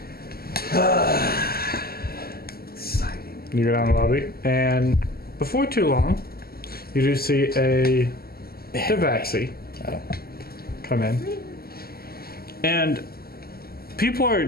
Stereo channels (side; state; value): right; late; 0.45 ms